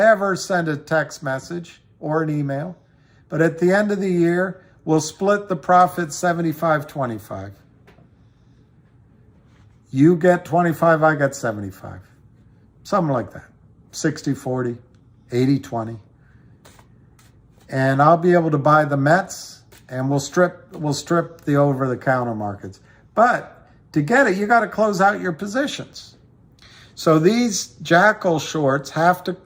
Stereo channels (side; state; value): both; identical; correlation 1.00